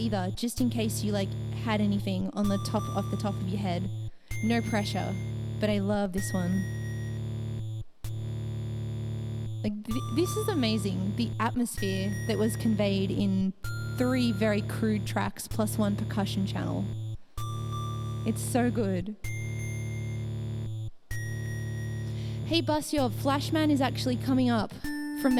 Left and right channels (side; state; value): both; identical; correlation 1.00